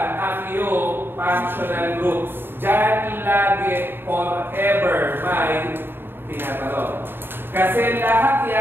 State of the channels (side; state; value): left; late; 0.10 ms